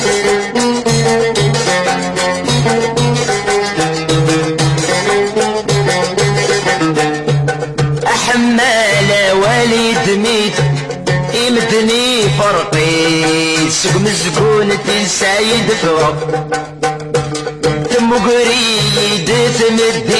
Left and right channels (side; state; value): both; identical; correlation 1.00